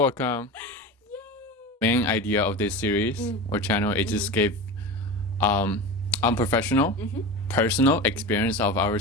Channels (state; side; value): normal; both; correlation 0.27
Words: Main idea of this series or channel is just give unprofessional, personal experience of